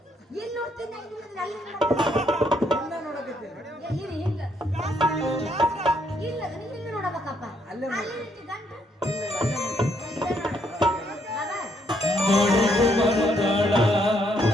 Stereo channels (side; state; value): both; normal; correlation 0.72